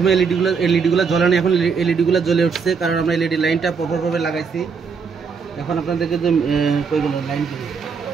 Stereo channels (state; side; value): quieter; left; 5.6 dB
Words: এলইডিগুলো জ্বলে না, এখন এলইডিগুলো জ্বলে উঠছে, কারণ আমরা এলইডি লাইনটা প্রপারভাবে লাগাইছি। এখন আপনাদেরকে যে কইগুলো লাইন দিই,